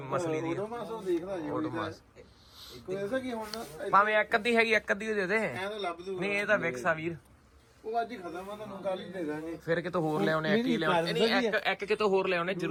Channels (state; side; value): identical; both; correlation 1.00